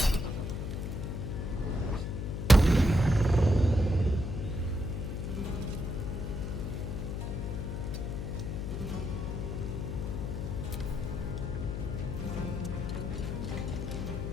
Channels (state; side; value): noise; left; hum, 3 dB below the sound